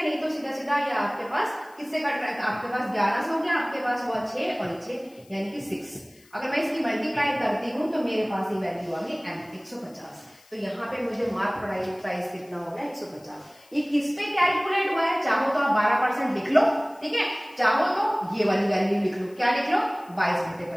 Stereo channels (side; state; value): left; noise; hiss, 28 dB below the sound